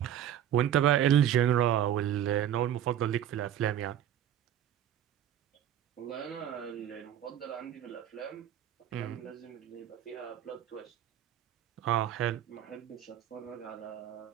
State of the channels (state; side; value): quieter; left; 10.7 dB